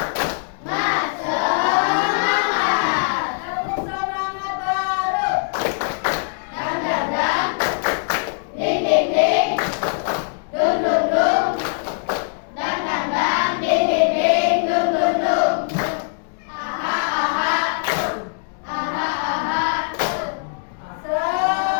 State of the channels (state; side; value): silent; right; digital silence